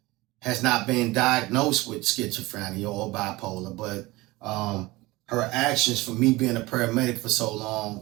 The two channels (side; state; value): left; quieter; 20.8 dB